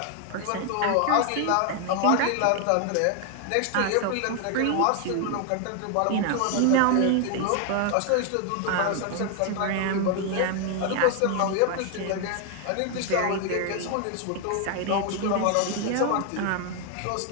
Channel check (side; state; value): both; different; correlation 0.00